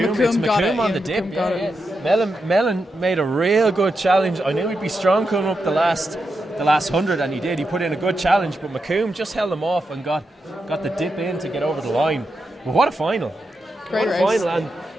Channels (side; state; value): both; normal; correlation 0.87